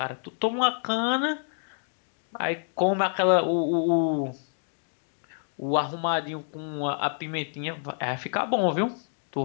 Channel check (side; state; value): right; silent; digital silence